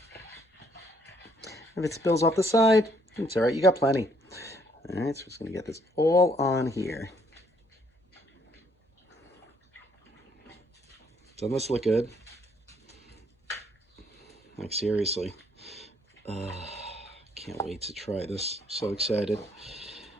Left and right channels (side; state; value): both; normal; correlation 0.67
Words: If it spills off the side, it's all right. You got plenty. All right, so we're just going to get this all on here. Doesn't this look good? Like, seriously. Can't wait to try this. So excited.